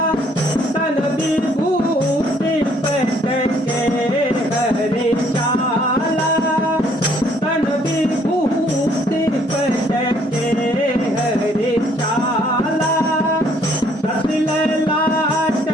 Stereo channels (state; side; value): normal; both; correlation 0.64